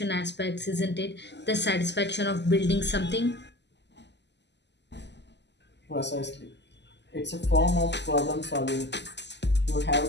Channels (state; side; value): late; right; 0.50 ms